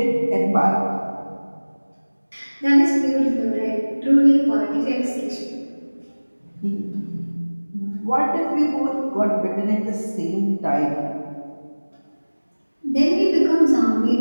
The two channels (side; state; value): both; inverted; correlation -1.00